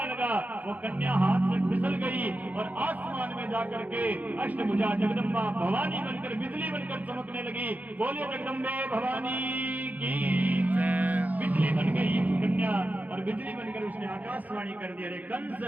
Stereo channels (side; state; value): left; late; 0.079 ms